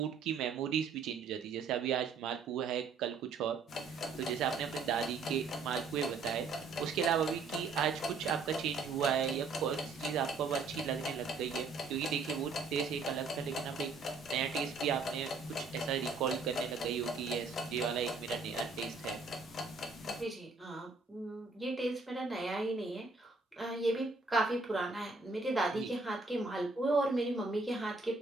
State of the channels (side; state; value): left; quieter; 4.2 dB